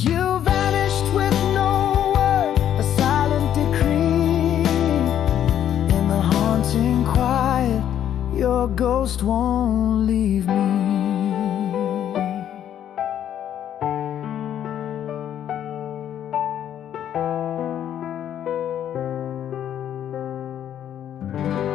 You vanished with no word, a silent decree. In the haunting quiet, your ghost won't leave me.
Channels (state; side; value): quieter; right; 10.3 dB